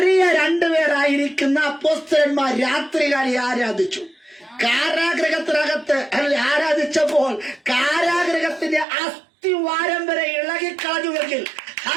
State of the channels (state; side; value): drops out; left; at 8.8 s